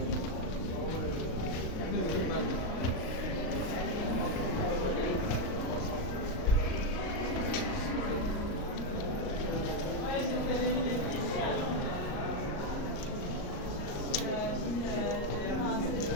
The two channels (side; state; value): right; late; 38 ms